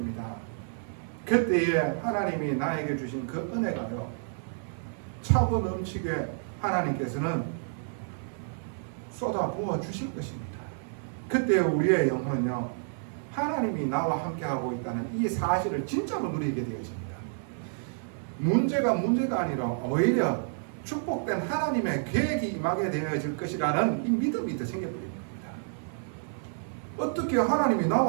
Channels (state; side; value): silent; left; 58 dB below the other